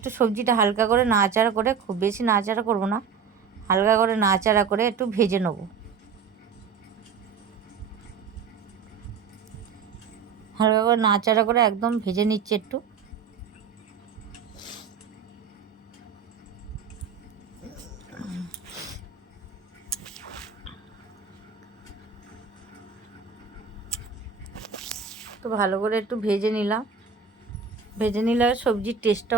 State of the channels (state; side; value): quieter; left; 6.2 dB